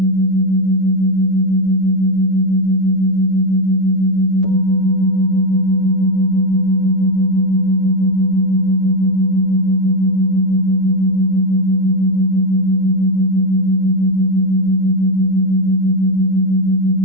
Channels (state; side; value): late; left; 9.4 ms